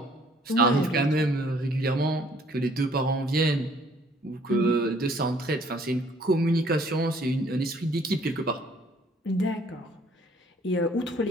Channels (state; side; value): normal; both; correlation 0.60